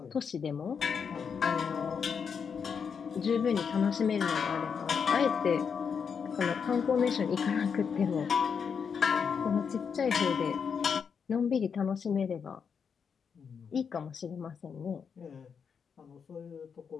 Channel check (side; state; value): right; quieter; 6.5 dB